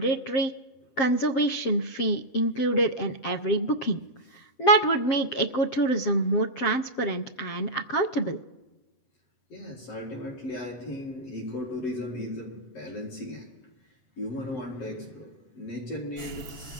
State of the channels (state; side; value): late; right; 7.5 ms